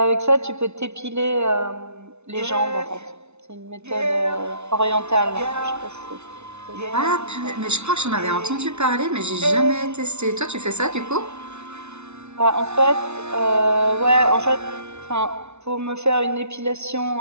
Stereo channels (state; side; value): late; left; 0.81 ms